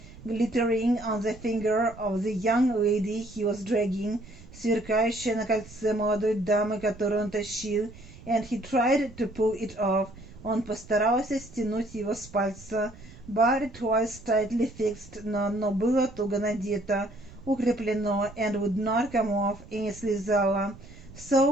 glittering on the finger of the young lady he was dragging, сверкающее на кольце молодой дамы, которую он тащил, and he tried to pull it off. Он постарался стянуть его с пальца, but it was tightly fixed, но оно было туго надето, укреплено, and would not come off, и не слезало.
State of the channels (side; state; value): right; noise; rumble, 19 dB below the sound